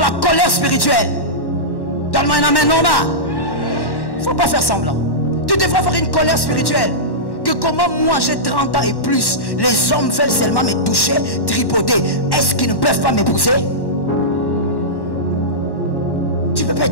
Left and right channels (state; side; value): late; right; 1.1 ms